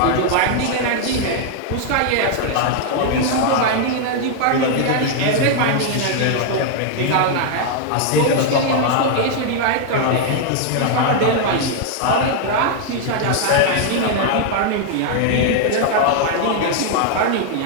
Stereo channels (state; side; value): different; both; correlation 0.00